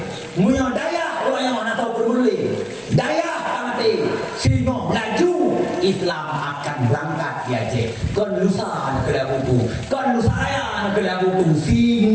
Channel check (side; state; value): both; identical; correlation 1.00